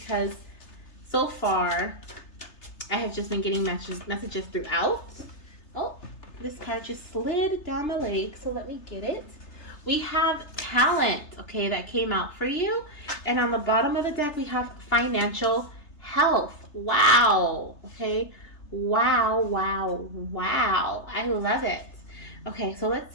so far I have just been getting messages throughout. Oh, this card just slid down my leg, so let me get it. We have talent, okay, that came out for you. And on the bottom of the deck, we have financial health. Wow, okay. Wow, wow, wow. I love it. Okay, so let's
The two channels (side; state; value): right; late; 3.3 ms